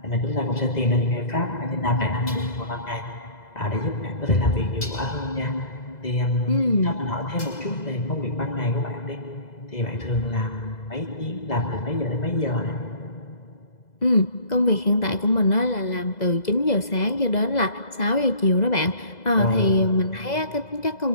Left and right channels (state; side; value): late; right; 2.0 ms